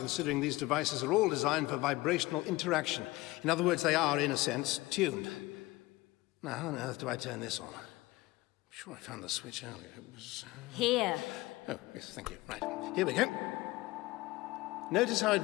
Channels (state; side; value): quieter; right; 20.1 dB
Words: these devices are all designed for vibrational interaction. In other words, they are, in a sense, tuned. Now, how on earth do I turn this on? I'm sure I found the switch earlier. It was... Here. Oh, yes, thank you. Right, here we go. Notice how